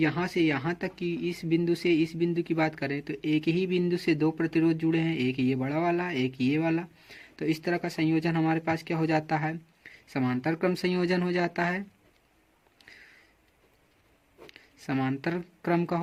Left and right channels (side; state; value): both; identical; correlation 1.00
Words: से यहाँ तक की इस बिंदु से इस बिंदु की बात करें तो एक ही बिंदु से दो प्रतिरोध जुड़े हैं, एक ये बड़ा वाला एक ये वाला। तो इस तरह का संयोजन हमारे पास क्या हो जाता है, समांतर क्रम संयोजन हो जाता है, समांतर क्रम का